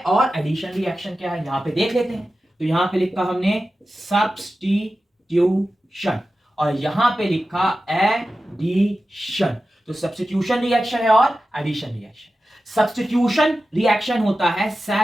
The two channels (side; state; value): both; normal; correlation 0.93